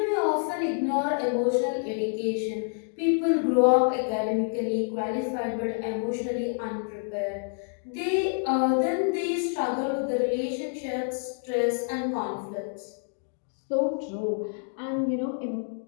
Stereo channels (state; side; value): silent; right; 59 dB below the other